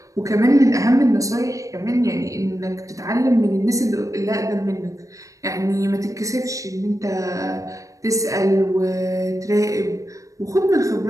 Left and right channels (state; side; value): late; left; 0.16 ms